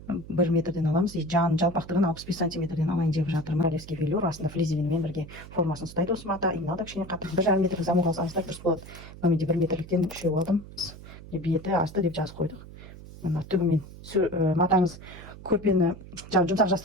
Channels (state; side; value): noise; right; hum, 16 dB below the sound